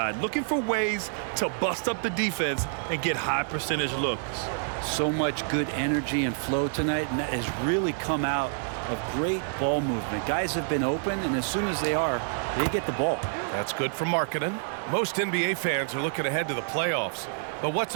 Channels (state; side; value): silent; left; digital silence